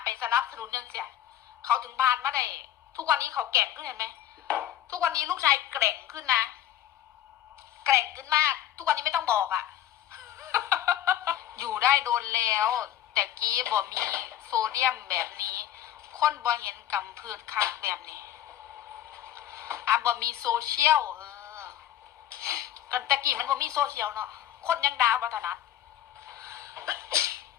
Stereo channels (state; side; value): quieter; right; 11.7 dB